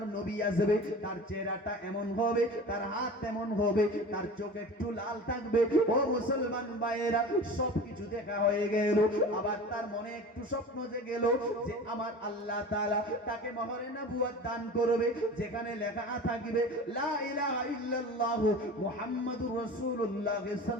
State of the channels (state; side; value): normal; both; correlation 0.36